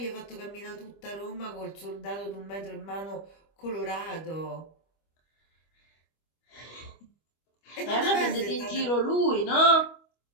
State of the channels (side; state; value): right; late; 25 ms